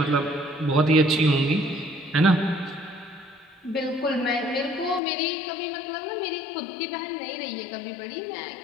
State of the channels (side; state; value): right; drops out; at 5.0 s